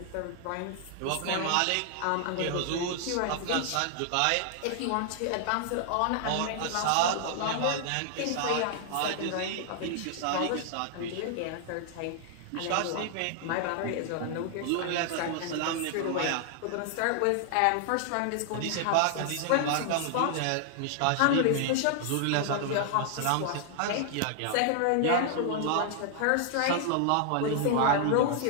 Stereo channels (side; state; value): both; different; correlation 0.00